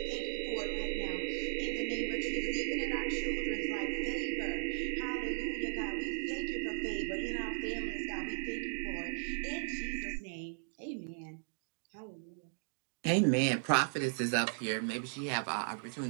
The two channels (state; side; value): silent; left; digital silence